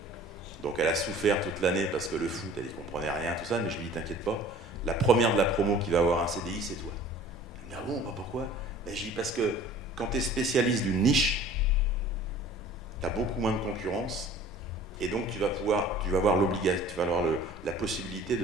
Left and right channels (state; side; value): normal; both; correlation 0.47